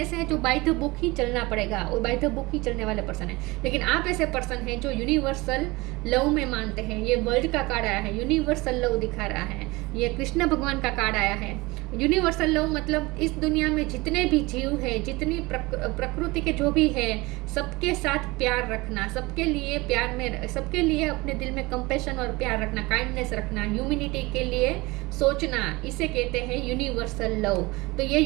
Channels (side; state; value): left; quieter; 22.7 dB